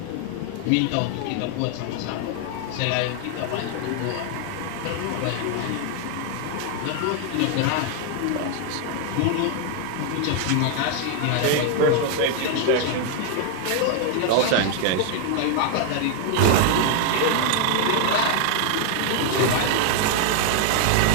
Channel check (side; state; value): both; different; correlation 0.00